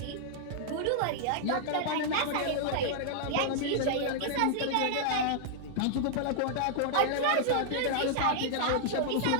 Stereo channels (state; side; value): different; both; correlation -0.01